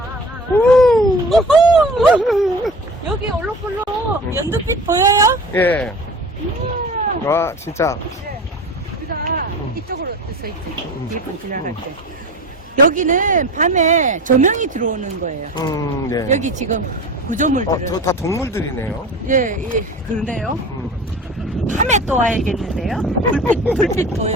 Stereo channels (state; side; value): normal; both; correlation 0.36